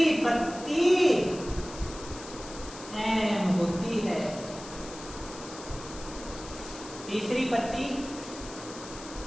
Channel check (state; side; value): noise; left; hiss, 14 dB below the sound